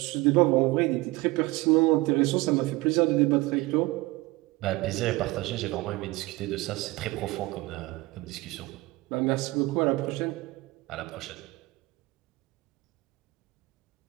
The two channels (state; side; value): quieter; left; 21.4 dB